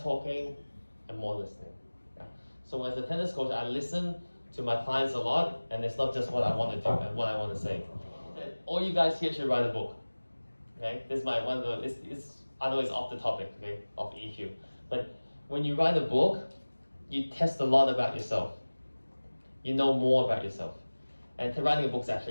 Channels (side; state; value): both; inverted; correlation -1.00